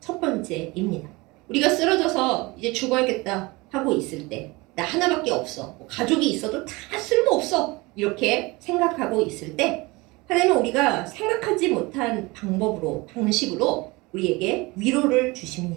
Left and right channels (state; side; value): quieter; left; 23.7 dB